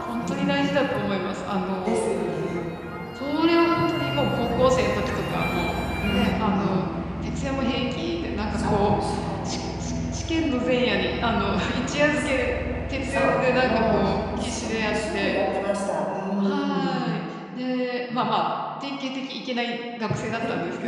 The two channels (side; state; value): both; identical; correlation 1.00